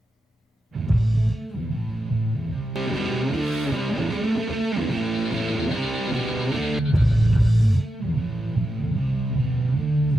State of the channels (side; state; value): both; normal; correlation 0.88